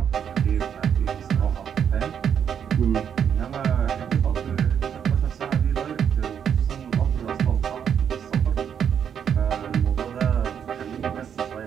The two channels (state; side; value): quieter; left; 8.2 dB